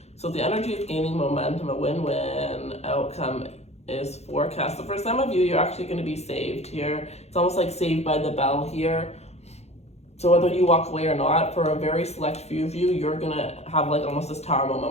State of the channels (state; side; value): late; right; 0.31 ms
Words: So the energy is gaining momentum, a win-win outcome is forecast. So for some of you, you're actually going to be saved here. It's almost like Saved by the Bell here. So whether you walk away or not, for a very select few of you, you're going to have like almost this tower moment